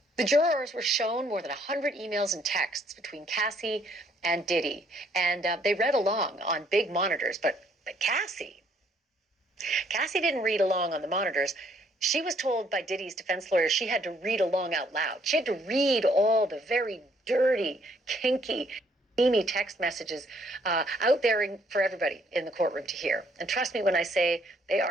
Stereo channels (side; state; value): both; normal; correlation 0.66